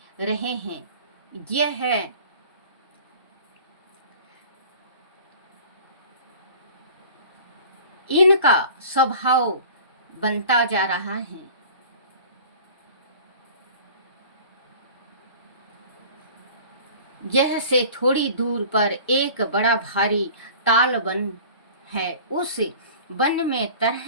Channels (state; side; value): inverted; both; correlation -0.44